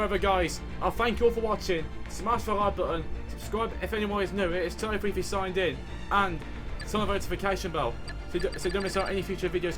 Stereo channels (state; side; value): identical; both; correlation 1.00